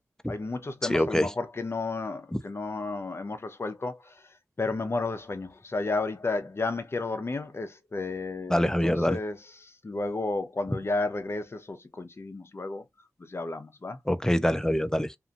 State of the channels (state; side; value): normal; both; correlation 0.90